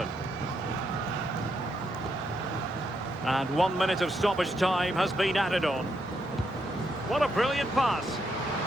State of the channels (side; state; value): both; normal; correlation 0.79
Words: And 1 minute of stoppage time has been added on. What a brilliant pass.